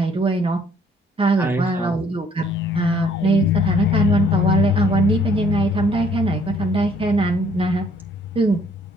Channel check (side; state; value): both; normal; correlation 0.61